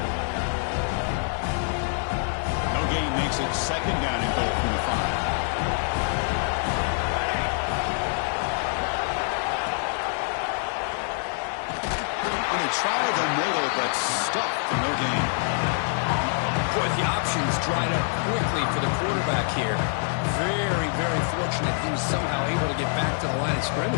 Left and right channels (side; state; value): right; silent; 61 dB below the other